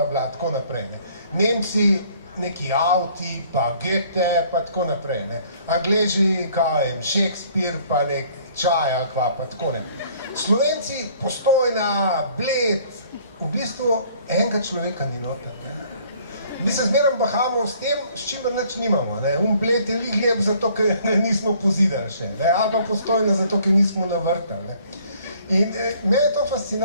tako naprej. Nemci, neki avti, pa Goethe, pa tako naprej. Angleži, Shakespeare, pa nek čaja, pa tako ne. Slovenci, Postojna, Bled, v bistvu enega človeka ni noter. Mi se zmeraj bahamo s tem, s čimer nič nimamo. Bled je lik lep zato, ker nismo pozidali še. Ali pa Postojna zato, ker nismo navrtali. In meni je to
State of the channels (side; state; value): both; inverted; correlation -0.59